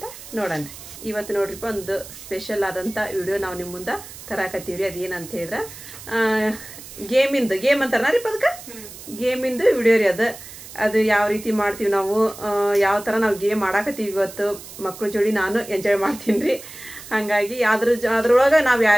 ನೋಡೋಣ. ಇವತ್ತು ನೋಡ್ರಿಪ್ಪ, ಒಂದು ಸ್ಪೆಷಲ್ ಆದಂಥ ವಿಡಿಯೋ ನಾವು ನಿಮ್ಮ ಮುಂದೆ ತರಾಕತ್ತೀವ್ರಿ. ಅದೇನಂತ ಹೇಳಿದ್ರೆ ಗೇಮ್ ಅಂತಾರ ರೀ, ಅದಕ್ಕೆ ಗೇಮಿಂದು ವಿಡಿಯೋ ರೀ. ಅದು ಯಾವ ರೀತಿ ಮಾಡ್ತೀವಿ ನಾವು, ಯಾವ ಥರ ನಾವು ಗೇಮ್ ಆಡಾಕತ್ತೀವಿ ಇವತ್ತು ಮಕ್ಕಳ ಜೋಡಿ. ನಾನು ಎಂಜಾಯ್ ಮಾಡ್ತೀನಿ ರೀ. ಹಾಗಾಗಿ ಅದ್ರೊಳಗೆ ನಾವು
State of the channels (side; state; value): right; noise; hiss, 15 dB below the sound